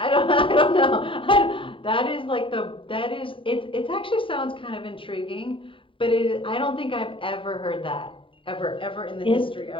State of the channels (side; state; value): right; late; 0.25 ms